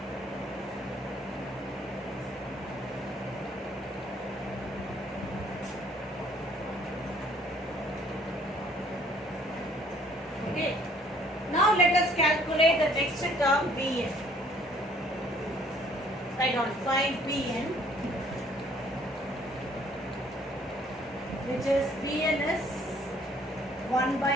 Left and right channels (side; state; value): both; normal; correlation 0.60